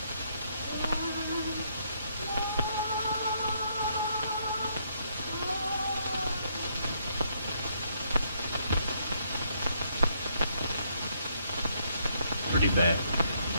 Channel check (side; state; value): both; inverted; correlation -0.72